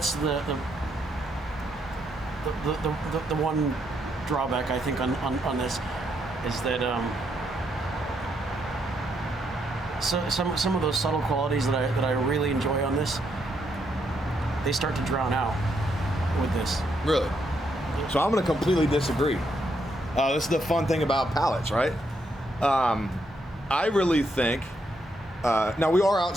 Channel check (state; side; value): normal; both; correlation 0.77